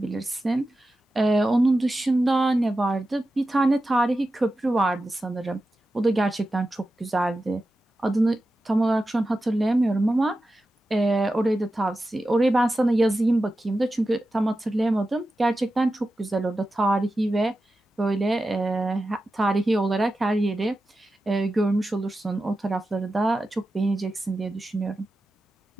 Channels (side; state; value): both; normal; correlation 0.92